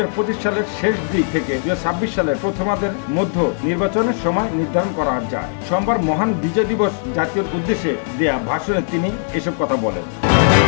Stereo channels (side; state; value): right; silent; digital silence